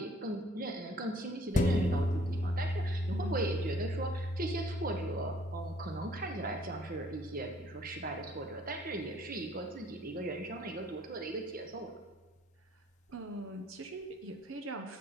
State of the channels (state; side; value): normal; both; correlation 0.60